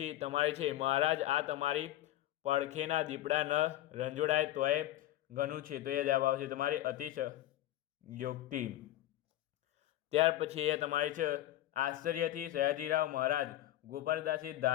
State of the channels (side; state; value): right; quieter; 14.2 dB